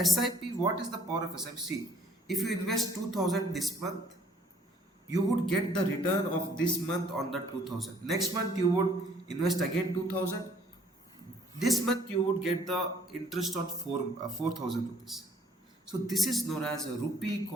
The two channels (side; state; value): both; normal; correlation 0.60